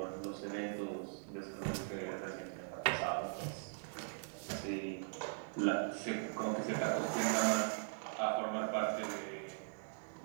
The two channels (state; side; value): silent; left; digital silence